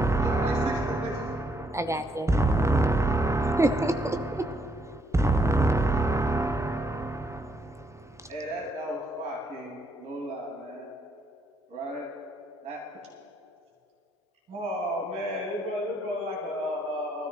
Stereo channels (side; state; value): both; normal; correlation 0.72